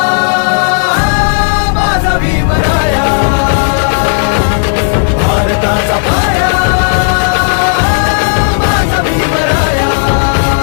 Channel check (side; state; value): right; silent; digital silence